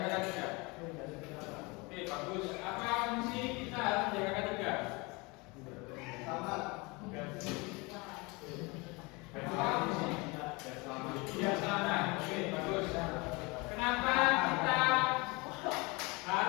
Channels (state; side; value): quieter; right; 26.5 dB